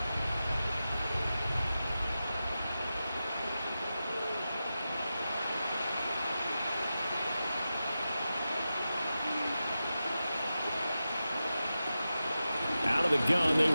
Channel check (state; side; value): inverted; both; correlation -0.92